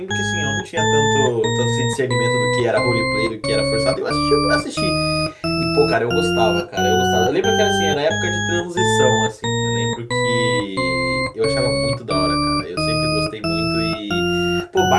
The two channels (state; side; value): identical; both; correlation 1.00